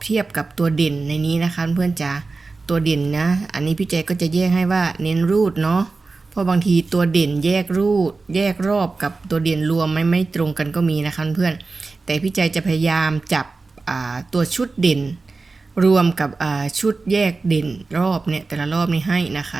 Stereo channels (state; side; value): quieter; left; 3.9 dB